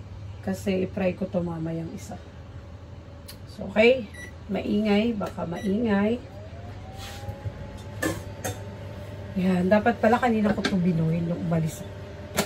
Kasi i-fry ko to mamayang isa. So, okay. Maingay. Baka maingay. Yan, dapat pala kanina ko ito binuhin nung umalis.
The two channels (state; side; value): identical; both; correlation 1.00